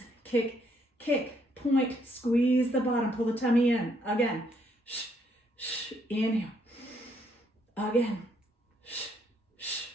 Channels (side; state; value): both; normal; correlation 0.71